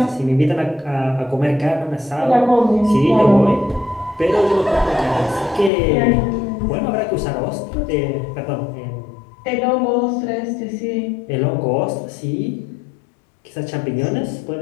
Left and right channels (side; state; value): right; drops out; at 5.7 s